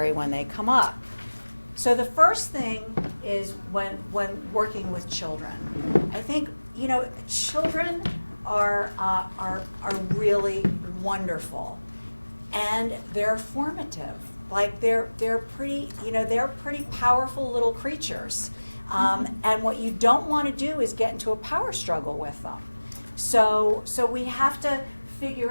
when they come up. So the first thing is when working with children. I think children are really wonderful. And they're formative. Like they're pretty powerful little creatures. And what you don't want to do is get into a power struggle with them. So we have to figure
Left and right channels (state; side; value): inverted; both; correlation -1.00